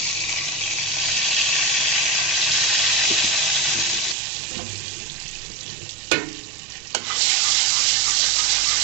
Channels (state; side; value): drops out; left; at 4.2 s